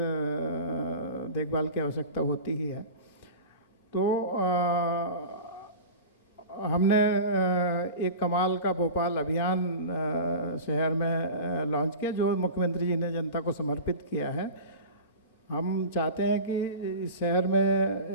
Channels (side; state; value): both; inverted; correlation -0.33